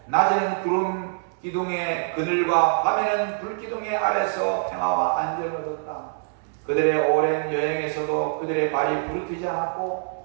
낮에는 구름 기둥의 그늘과 밤에는 불 기둥의 아래서 평화와 안정을 얻었다. 그들의 오랜 여행에서도 그들의 발이 부르트지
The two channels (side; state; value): left; silent; digital silence